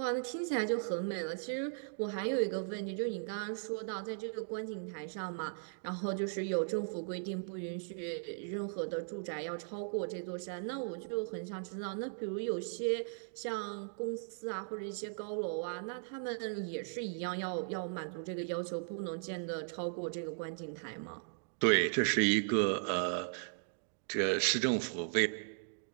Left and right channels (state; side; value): silent; left; digital silence